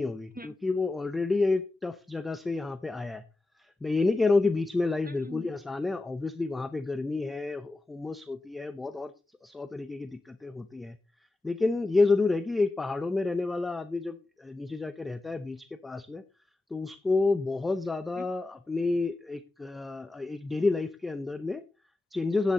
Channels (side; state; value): right; quieter; 3.1 dB